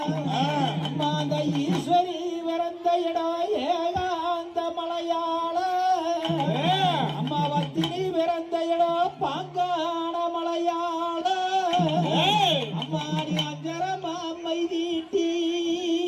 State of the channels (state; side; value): identical; both; correlation 1.00